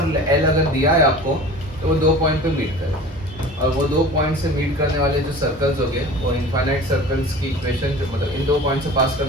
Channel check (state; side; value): normal; both; correlation 0.39